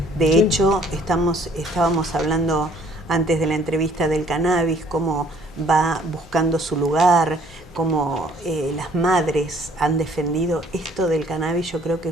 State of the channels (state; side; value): normal; both; correlation 0.59